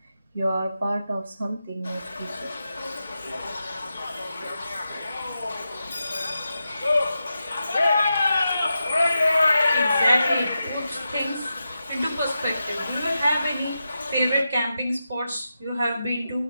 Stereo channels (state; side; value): inverted; both; correlation -0.89